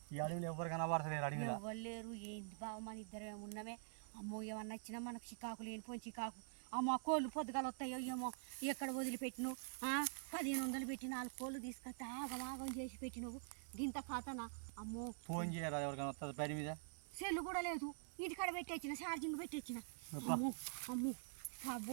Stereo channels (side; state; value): left; silent; digital silence